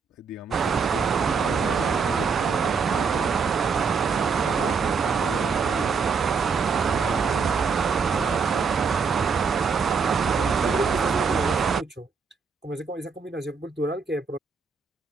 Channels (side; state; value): left; quieter; 5.4 dB